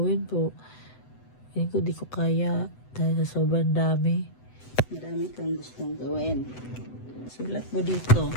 pero hindi ko di ko kaya dahil sa sobrang dami. Marami kang gustong gawin. Sulat mo dito.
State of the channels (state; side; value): late; right; 7.9 ms